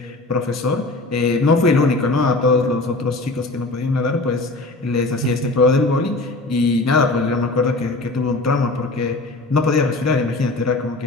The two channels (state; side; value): quieter; right; 3.1 dB